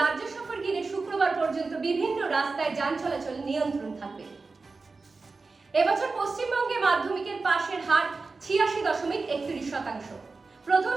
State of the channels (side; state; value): left; quieter; 4.0 dB